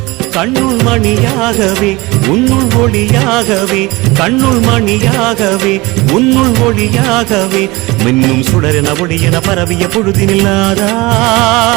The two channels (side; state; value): left; quieter; 22.5 dB